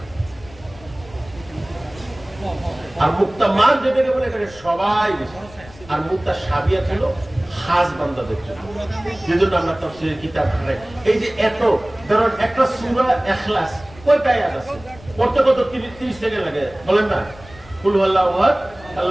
আর মুক্তামাত যেটাকে বলে, এখানে সবাই বুঝে। আর মুতাশাবিহাত হলো খাস বান্দাদের জন্য, যেজন্য আমরা তাফসীরের কিতাব পড়ি। এই যে এত, ধরুন একটা সূরা ইখলাস কয়টা আয়াত আছে, পড়তে কত 30 সেকেন্ড লাগে, বলেন না? কুল হুয়াল্লাহু আহাদ,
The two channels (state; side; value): noise; left; rumble, 21 dB below the sound